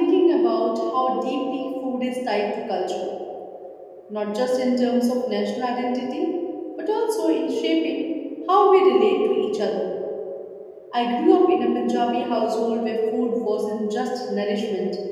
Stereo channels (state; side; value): identical; both; correlation 1.00